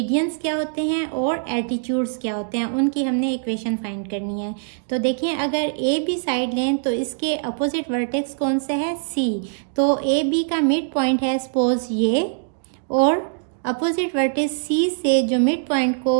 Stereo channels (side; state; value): left; silent; digital silence